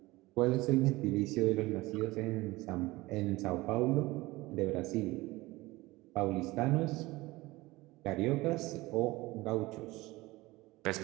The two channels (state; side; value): quieter; left; 20.3 dB